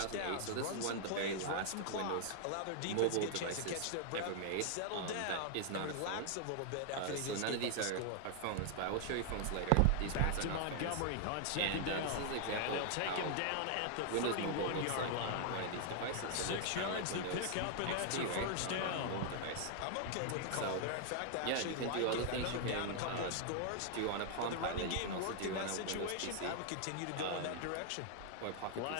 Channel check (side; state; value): both; different; correlation 0.00